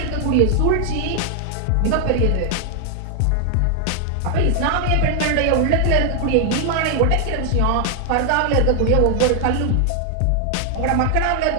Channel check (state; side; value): different; both; correlation 0.00